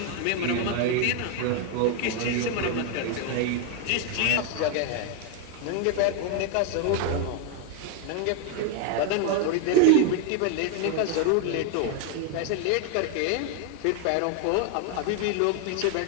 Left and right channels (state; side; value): different; both; correlation 0.01